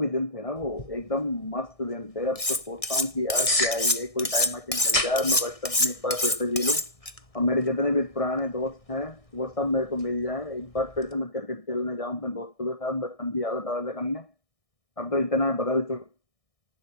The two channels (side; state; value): right; late; 1.6 ms